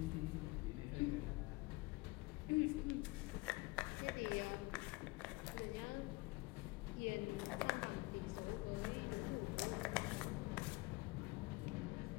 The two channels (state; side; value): quieter; right; 23.1 dB